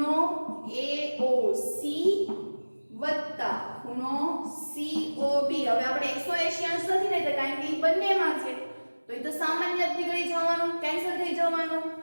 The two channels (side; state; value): both; inverted; correlation -1.00